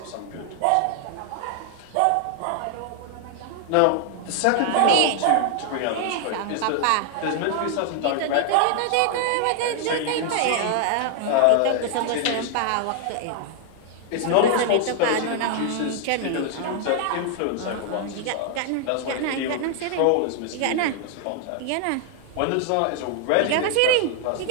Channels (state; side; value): different; both; correlation 0.00